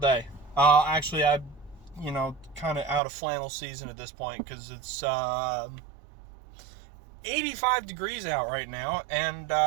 Actually, I'm, kind of out of flannel season at this point because it's 85 degrees out right now, and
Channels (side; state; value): left; drops out; at 3.0 s